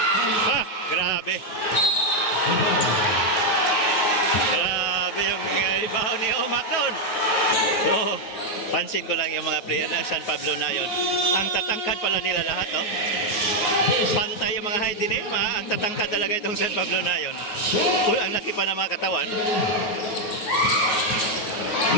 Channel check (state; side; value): late; right; 9.3 ms